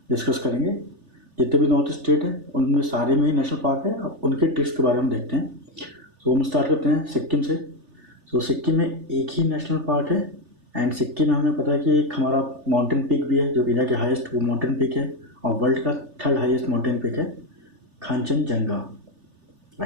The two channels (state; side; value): late; left; 3.4 ms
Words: डिस्कस करेंगे। जितने भी नॉर्थ ईस्ट स्टेट है उनमें सारे में ही नेशनल पार्क है, अब उनके ट्रिक्स के बारे में हम देखते हैं। सो हम स्टार्ट करते हैं सिक्किम से। सो सिक्किम में एक ही नेशनल पार्क है एंड सिक्किम में हमें पता है कि एक हमारा माउंटेन पीक भी है जो इंडिया के हाईएस्ट वो माउंटेन पीक है और वर्ल्ड का थर्ड हाईएस्ट माउंटेन पीक है कांचनजंगा,